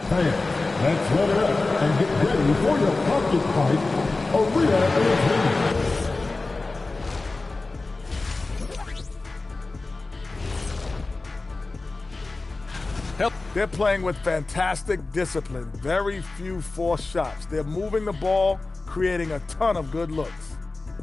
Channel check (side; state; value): right; quieter; 3.4 dB